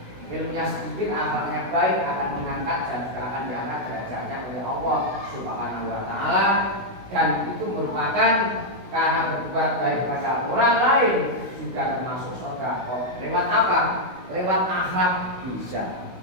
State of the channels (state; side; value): late; left; 16 ms